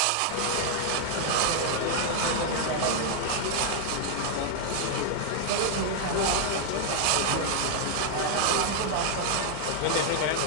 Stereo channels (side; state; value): both; different; correlation 0.00